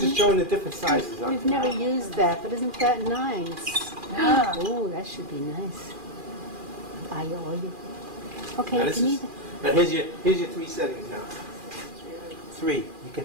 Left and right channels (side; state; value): left; late; 2.4 ms